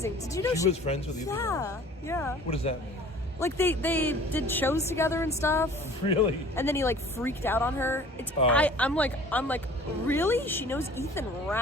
Did you know she was friends with Ethan Ralph? Yeah. What does that mean? Like they did shows together and stuff. Really? And then he like freaked out on her. I'm like, really? She knows Ethan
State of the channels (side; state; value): both; normal; correlation 0.47